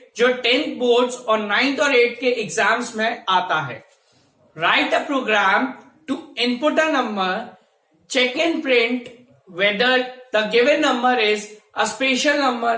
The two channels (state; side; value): identical; both; correlation 1.00